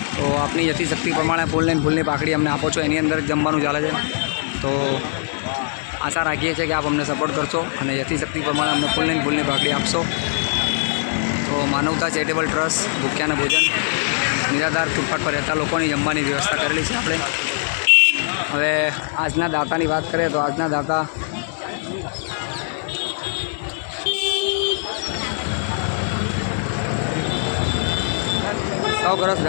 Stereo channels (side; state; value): right; silent; digital silence